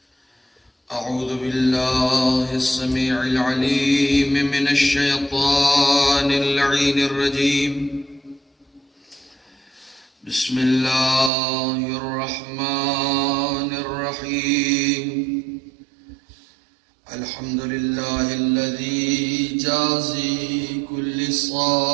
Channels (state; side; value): drops out; left; at 11.3 s